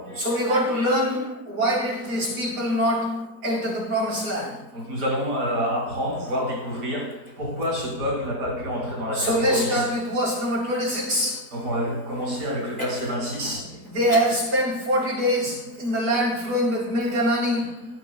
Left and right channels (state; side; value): late; left; 4.5 ms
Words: Dieu. So we got to learn, why did these people not enter the promised land? Donc nous allons apprendre, voire découvrir pourquoi ce peuple n'a pas pu entrer dans la So terre let's promise. start with verse number 26. Donc on va commencer avec le verset 26. They have spent 40 days in the land flowing with milk and honey.